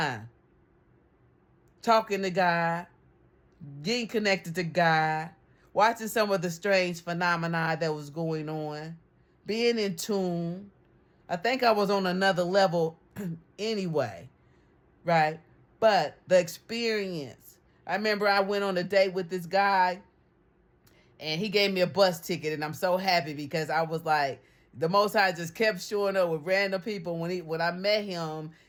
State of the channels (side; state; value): both; identical; correlation 1.00